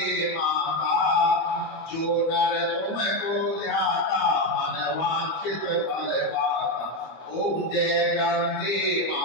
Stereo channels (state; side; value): late; right; 26 ms